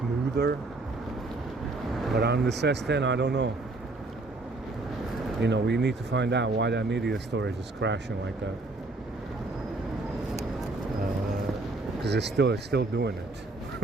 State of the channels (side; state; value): left; quieter; 3.2 dB